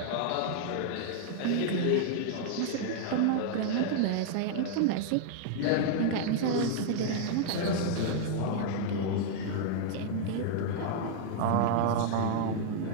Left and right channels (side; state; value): both; different; correlation -0.01